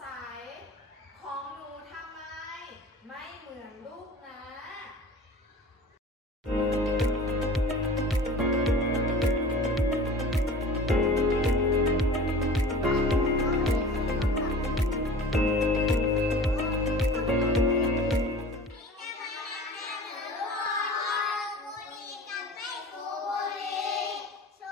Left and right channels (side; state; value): both; normal; correlation 0.41